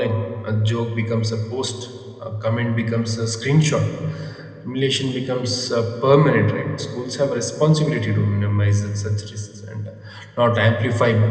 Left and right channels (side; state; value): both; identical; correlation 1.00